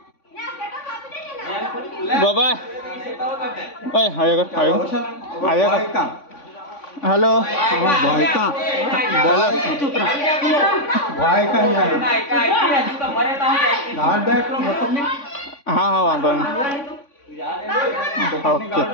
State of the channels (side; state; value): right; late; 3.5 ms